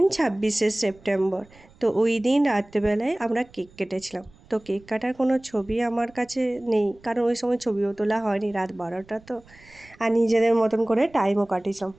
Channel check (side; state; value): right; noise; rumble, 26 dB below the sound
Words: 26শে সেপ্টেম্বর। তো ওই দিন রাত্রেবেলায় আমরা কেক কেটেছিলাম। তো কেক কাটার কোনো ছবি আমার কাছে নেই, কারণ ওই সময় ছবিও তোলা হয়নি, রাত 12টা তো। আর নিজেদের মতন করে টাইমও কাটিয়েছিলাম,